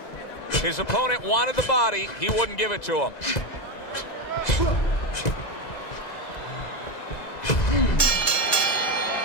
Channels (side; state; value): right; late; 1.9 ms